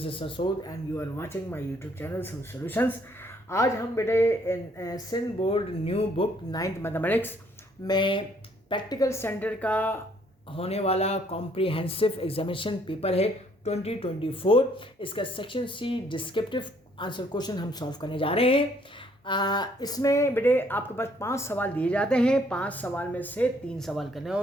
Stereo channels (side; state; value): both; normal; correlation 0.65